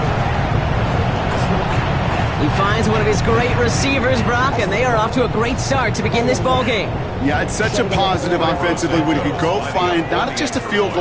He finds one of his great receivers, Brock, and they are off to a great start to begin this ball game. Yeah, it's such a positive offensively when he could go find not just a field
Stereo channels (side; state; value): both; identical; correlation 1.00